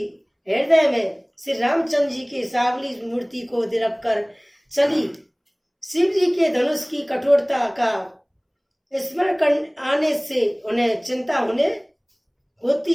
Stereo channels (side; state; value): both; identical; correlation 1.00